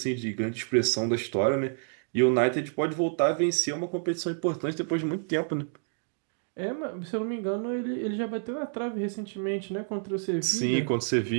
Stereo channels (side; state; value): left; silent; digital silence